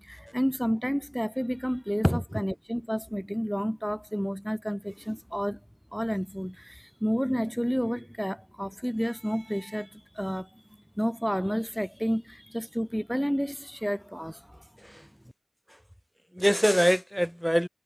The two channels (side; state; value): both; identical; correlation 1.00